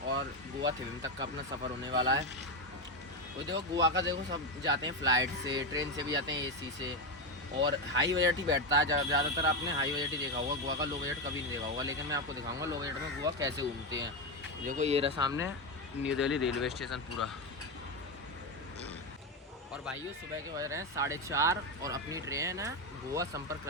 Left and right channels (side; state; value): both; normal; correlation 0.11